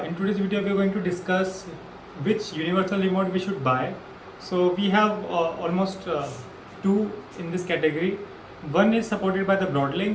in today's video we are going to discuss which universal remote we should buy. So we have almost two in this category. One is supported by the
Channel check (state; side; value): identical; both; correlation 1.00